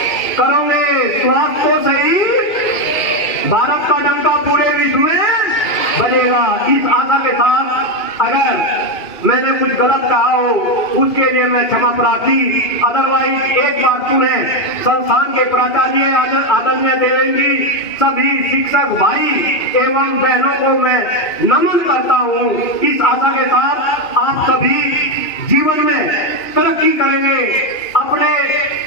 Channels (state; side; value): late; right; 2.4 ms